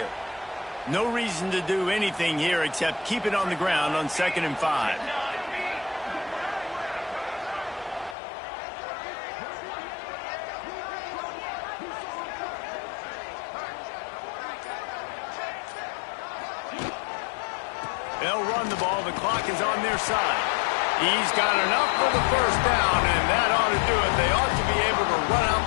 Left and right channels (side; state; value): right; drops out; at 8.2 s